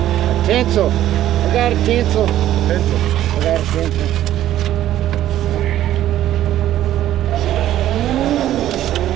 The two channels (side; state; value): left; quieter; 12.8 dB